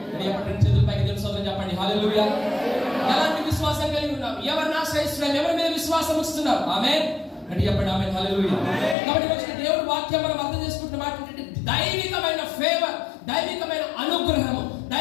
ఎప్పటి చేతుల పైకి తెలుసు చెప్పండి. హల్లెలూయా. ఎలాంటి విశ్వాసం కలిగి ఉన్నాం? ఎవరిని ఆశ్రయిస్తున్నాం? ఎవరి మీద విశ్వాసం ఇస్తున్నాం? ఆమేన్ అంటే చెప్పండి. ఆమేన్. హల్లెలూయా. కాబట్టి వచ్చిన దేవుడి వాక్యం మనం అర్థం చేసుకుంటున్న మాట ఏంటంటే దైవికమైన ఫేవర్, దైవికమైన అనుగ్రహము,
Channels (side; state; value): right; drops out; at 9.0 s